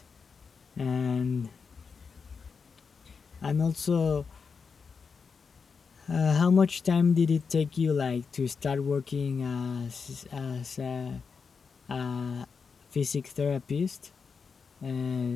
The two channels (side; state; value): right; quieter; 5.5 dB